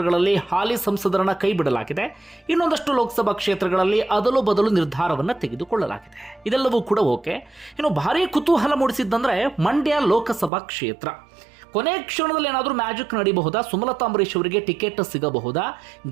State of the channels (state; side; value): drops out; left; at 10.5 s